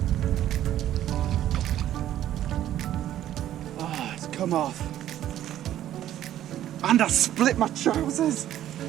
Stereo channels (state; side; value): quieter; left; 12.2 dB